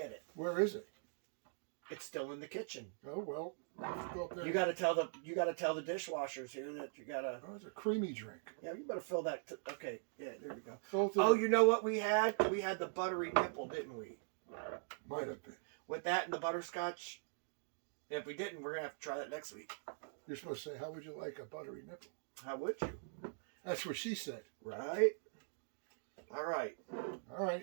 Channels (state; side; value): silent; left; digital silence